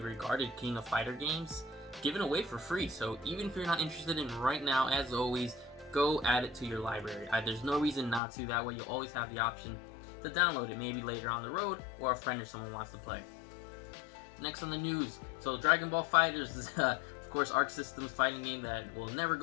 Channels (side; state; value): right; drops out; at 8.2 s